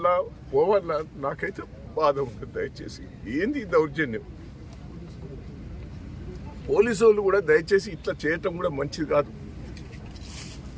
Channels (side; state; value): both; identical; correlation 1.00